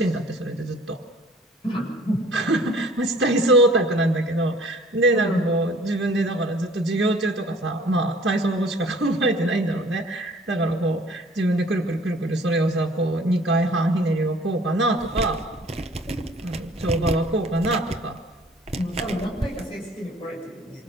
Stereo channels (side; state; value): both; normal; correlation 0.52